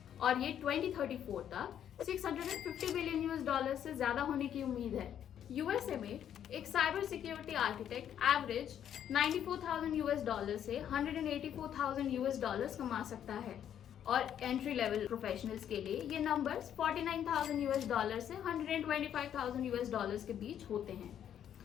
और ये 2034 तक 650 बिलियन यूएस डॉलर से ज्यादा होने की उम्मीद है। यूएसए में एक cyber security architect average 94,000 US dollar से 184,000 यूएस डॉलर्स कमा सकता है और एंट्री लेवल प्रोफेशनल्स के लिए ये नंबर्स 49,000 यूएस डॉलर से 125,000 यूएस डॉलर्स के बीच होते हैं।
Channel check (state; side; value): quieter; right; 9.7 dB